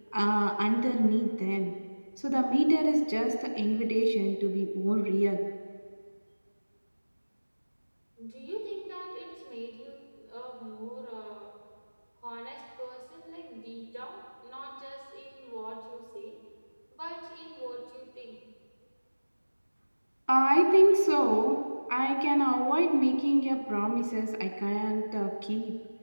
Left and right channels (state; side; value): inverted; both; correlation -1.00